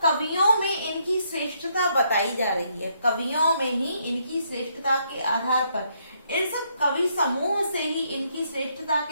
कवियों में इनकी श्रेष्ठता बताई जा रही है, कवियों में ही इनकी श्रेष्ठता के आधार पर, इन सब कवि समूह से ही इनकी श्रेष्ठता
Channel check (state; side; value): inverted; both; correlation -0.73